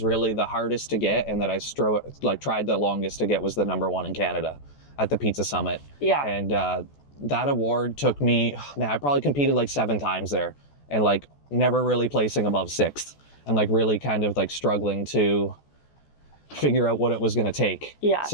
really the hardest to get and that I tried the longest to get was the #1 in Canada. at the Pizza Summit. Yeah. And that award took me, man, I probably competed like 7 times there, and like never really placing above 6th, and like really kind of like struggling to figure out what it was going to take. Yeah.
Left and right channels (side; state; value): right; late; 14 ms